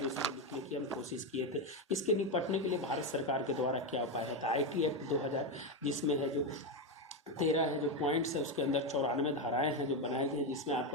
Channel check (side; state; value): both; normal; correlation 0.10